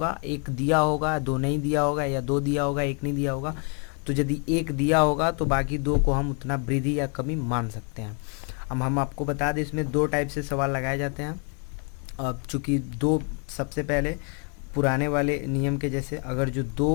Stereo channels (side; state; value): right; quieter; 37.8 dB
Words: एक दिया होगा, दो नहीं दिया होगा, या दो दिया होगा, एक नहीं दिया होगा। तो यदि एक दिया होगा तो बाकी दो को हम उतना वृद्धि या कमी मान सकते हैं। अब हम आपको बता दें इसमें दो टाइप से सवाल लगाए जाते हैं। अब चूंकि दो, सबसे पहले पुराने वाले नियम के जैसे अगर जो